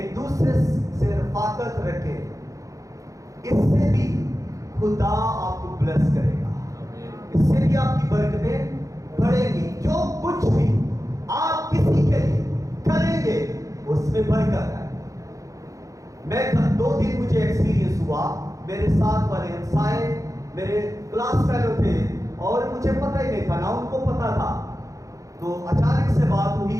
दूसरे से रफाकत रखें। इससे भी खुदा आपको ब्लेस करेगा, इससे भी आपकी बरकतें बढ़ेंगी। जो कुछ भी आप किसी के लिए करेंगे उसमें बरकत है। मैं 2 दिन मुझे एक्सपीरियंस हुआ, मेरे साथ वाले हमसाए मेरे क्लास फेलो थे और मुझे पता ही नहीं था, ना उनको पता था। तो अचानक से बात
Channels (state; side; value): late; left; 0.16 ms